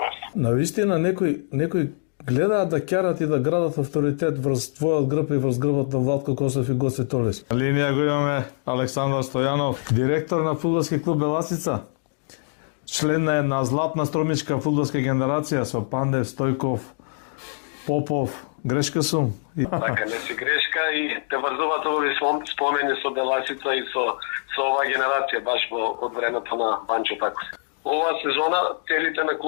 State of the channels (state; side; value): silent; right; digital silence